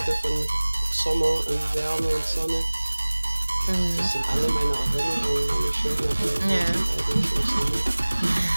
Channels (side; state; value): both; inverted; correlation -1.00